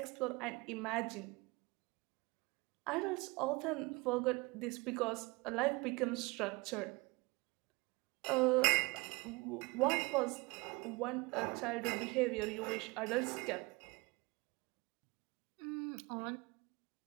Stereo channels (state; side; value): quieter; left; 25.2 dB